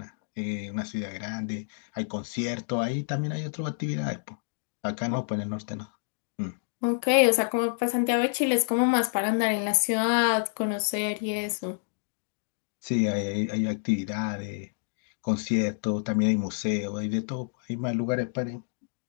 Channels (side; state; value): right; silent; digital silence